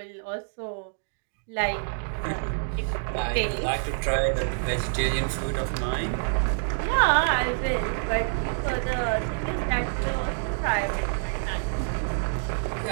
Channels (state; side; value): silent; left; digital silence